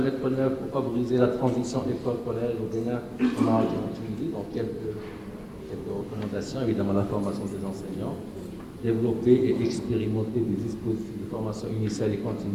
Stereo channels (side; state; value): both; identical; correlation 1.00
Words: en œuvre pour favoriser la transition école-collège au Bénin, au Maroc et en Tunisie. Donc, quelques recommandations. Évidemment, la formation des enseignants. Développer et expérimenter des dispositifs de formation initiale et